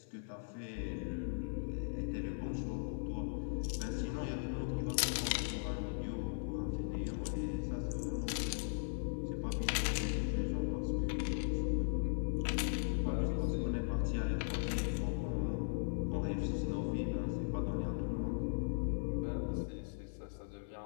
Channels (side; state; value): right; silent; 52 dB below the other